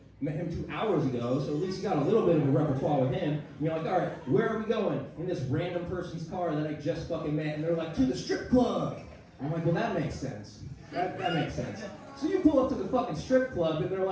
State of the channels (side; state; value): both; identical; correlation 1.00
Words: met him 2 hours ago, so at least you got a little bit of a repertoire with him. And you're like, all right, where are we going? In this random person's car that I just fucking met, and they're like, to the strip club. And I'm like, well, that makes sense. That makes sense. So you pull up to the fucking strip club, and they're